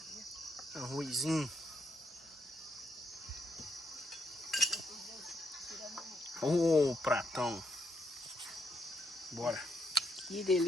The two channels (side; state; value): both; normal; correlation 0.79